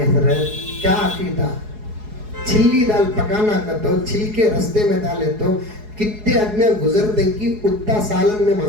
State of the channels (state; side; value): late; left; 4.7 ms